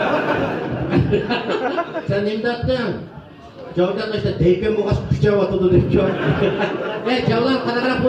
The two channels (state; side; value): identical; both; correlation 1.00